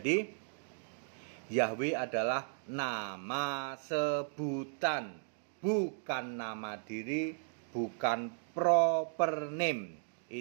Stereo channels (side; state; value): left; silent; digital silence